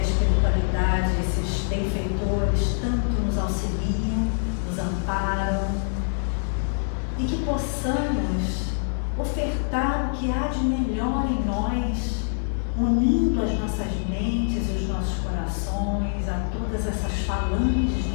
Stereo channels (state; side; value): silent; right; 61 dB below the other